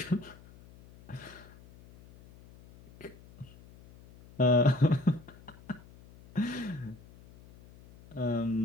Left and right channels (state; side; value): noise; left; hum, 22 dB below the sound